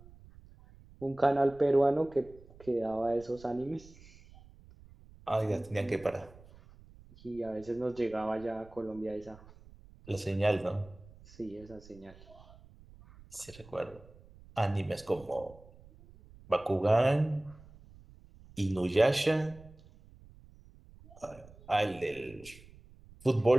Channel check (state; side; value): noise; right; rumble, 22 dB below the sound